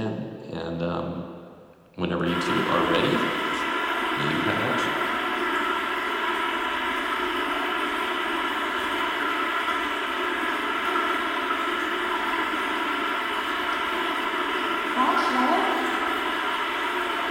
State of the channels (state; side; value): identical; both; correlation 1.00